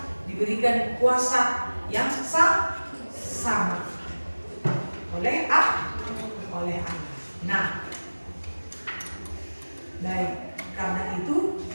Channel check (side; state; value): both; inverted; correlation -1.00